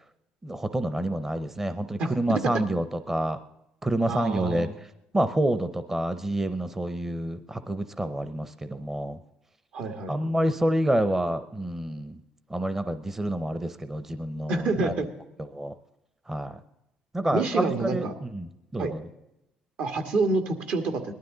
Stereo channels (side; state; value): both; normal; correlation 0.85